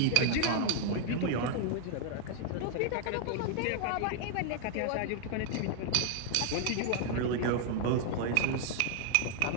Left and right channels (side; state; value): both; different; correlation 0.00